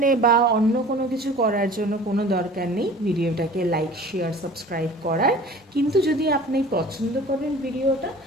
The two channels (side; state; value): both; normal; correlation 0.44